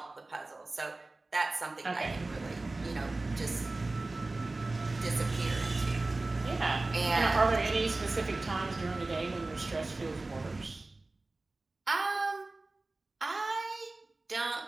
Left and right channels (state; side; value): quieter; left; 3.1 dB